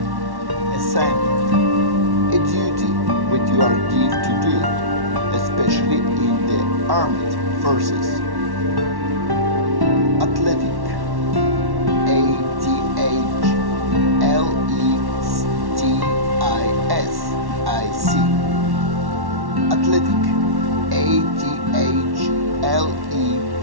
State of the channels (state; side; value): late; left; 1.1 ms